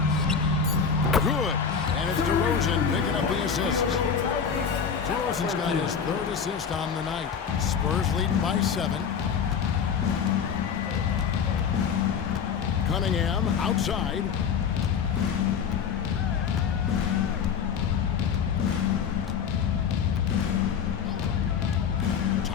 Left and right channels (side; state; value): right; quieter; 6.9 dB